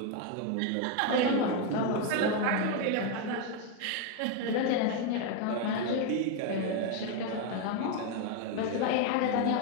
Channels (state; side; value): different; both; correlation 0.01